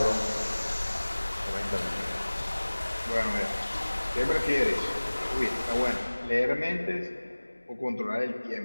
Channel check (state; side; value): inverted; both; correlation -1.00